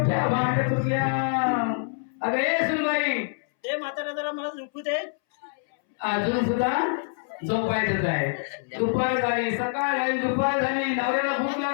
म्हातारा जरा मला झोपू दे. अजून सुद्धा झोपायचंच आहे. दुपार झाली, सकाळ झाली, दुपार झाली, नवऱ्याला भूक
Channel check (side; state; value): right; silent; 61 dB below the other